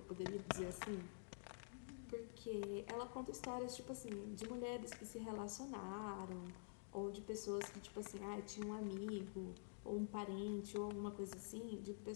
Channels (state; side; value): silent; right; digital silence